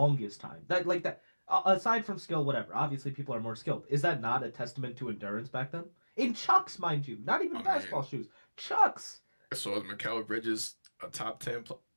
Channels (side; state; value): both; inverted; correlation -1.00